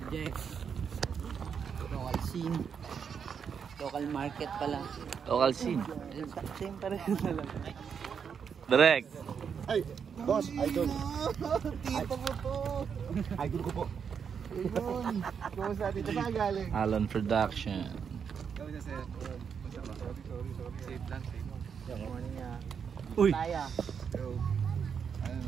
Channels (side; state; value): left; quieter; 6.9 dB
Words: Jeff. Local scene. Local market pala. Local scene. Same pa rin na lang. Direct. Ay, boss, idol. Tipo mo to. Idol ko po. Ayun. Kumusta dito saan galing? Alon Production. Kumusta sir? Safe lang, safe. Good morning nga. Uy. Taya. Yo. Ano